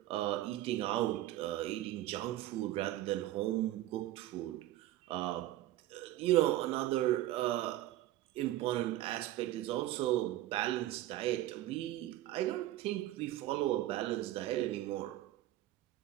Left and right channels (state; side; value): quieter; left; 14.8 dB